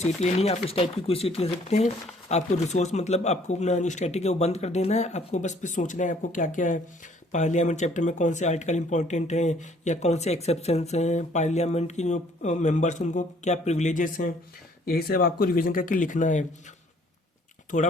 लेनी है। आप इस टाइप की कोई सीट ले सकते हैं। आपको रिसोर्स मतलब आपको अपना जो स्टैटिक है वो बंद कर देना है। आपको बस फिर सोचना है आपको क्या क्या है पार्लियामेंट चैप्टर में, कौन से आर्टिकल इंपॉर्टेंट हैं या कौन से एक्सेप्शंस हैं, पार्लियामेंट की जो मेंबर्स उनको क्या प्रिविलेजेस हैं, यही सब आपको रिवीजन करके लिखना है। थोड़ा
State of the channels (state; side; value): normal; both; correlation 0.60